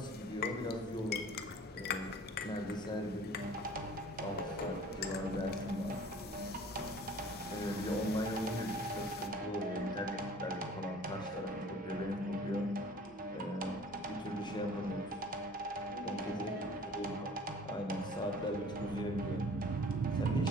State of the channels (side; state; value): both; normal; correlation 0.49